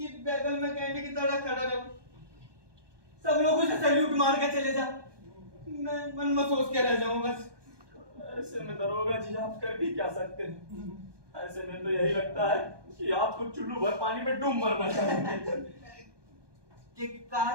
बगल में कैंडी की तरह खड़ा रहूं, सब लोग उसे सैल्यूट मार के चले जा, मैं मन में सोच के रह जाऊं बस। ऐसे में दरोगा जी आप कर भी क्या सकते हैं? ऐसे में तो यही लगता है कि आपको चुल्लू भर पानी में डूब मरना चाहिए।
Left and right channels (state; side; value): late; left; 1.2 ms